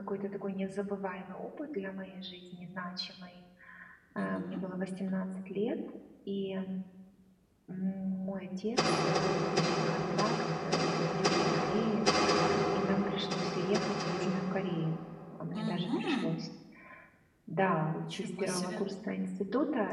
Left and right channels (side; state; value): both; identical; correlation 1.00